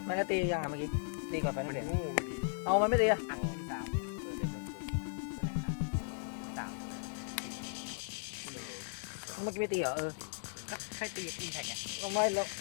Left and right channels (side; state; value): right; silent; digital silence